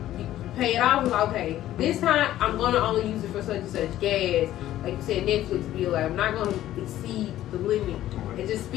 pay it off, it's like, okay, this time I'm gonna only use it for such and such gas. Like you said, Netflix bill. Like I'm not gonna exceed the limit and just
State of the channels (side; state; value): right; quieter; 13.4 dB